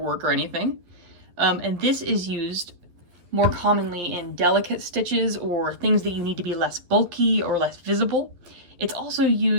or anything. And this is used more commonly in delicate stitches or things that you need to be less bulky or less visible. It's also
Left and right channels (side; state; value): left; late; 11 ms